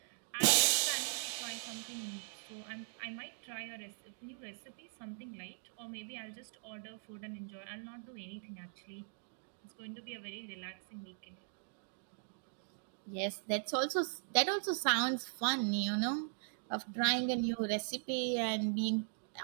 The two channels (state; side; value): silent; left; digital silence